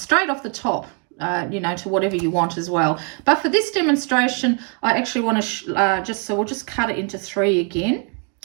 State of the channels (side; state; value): left; quieter; 37.0 dB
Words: off the top, you know, to whatever you want as well. But for this demonstration, I actually want to so we'll just cut it into 3 again.